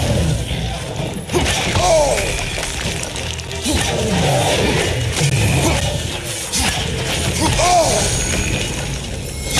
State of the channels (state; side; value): identical; both; correlation 1.00